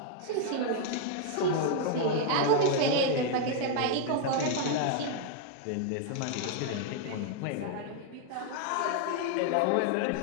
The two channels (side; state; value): both; different; correlation 0.00